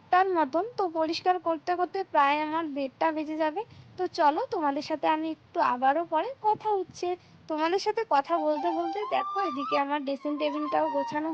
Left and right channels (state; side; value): identical; both; correlation 1.00